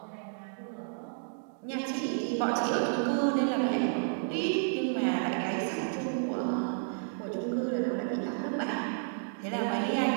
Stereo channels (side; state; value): left; silent; digital silence